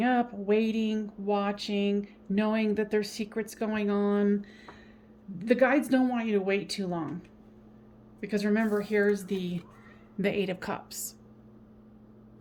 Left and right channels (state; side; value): identical; both; correlation 1.00